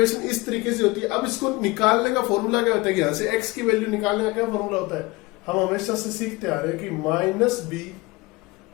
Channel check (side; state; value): right; quieter; 22.9 dB